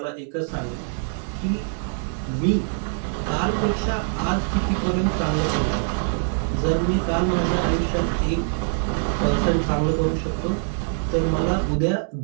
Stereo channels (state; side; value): silent; left; 63 dB below the other